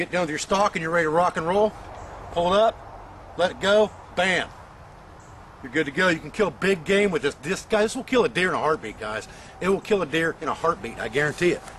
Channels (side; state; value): both; identical; correlation 1.00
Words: done with your stalk and you're ready to rock and roll, pull it up, let it go, bam. You're good to go. You can kill big game with this. This will kill a deer in a heartbeat, guys. It will kill a deer in a heartbeat, I guarantee it.